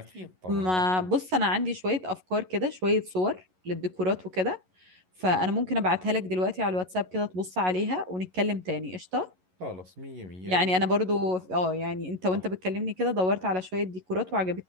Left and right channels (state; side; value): late; left; 11 ms